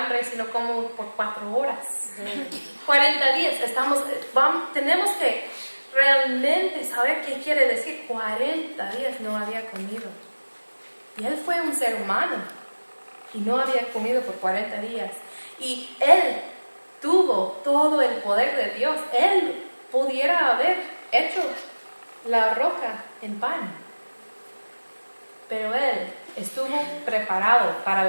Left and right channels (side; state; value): both; inverted; correlation -1.00